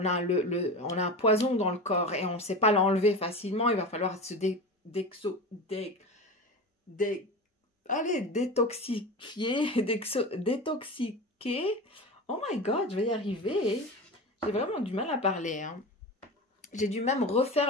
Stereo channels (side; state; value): both; normal; correlation 0.28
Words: a un poison dans le corps et on ne sait pas l'enlever facilement. Il va falloir se détoxiquer. Oh my god, je vais y arriver. J'ai vraiment du mal à parler. Hein. J'ai dû même